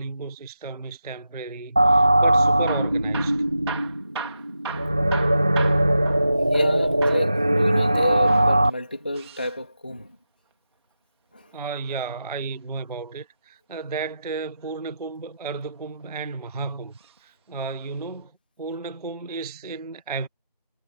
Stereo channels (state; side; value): inverted; both; correlation -0.88